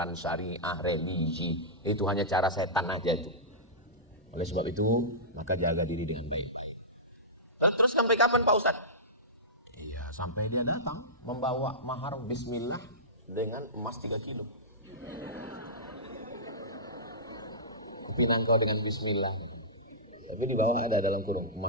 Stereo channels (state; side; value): normal; both; correlation -0.17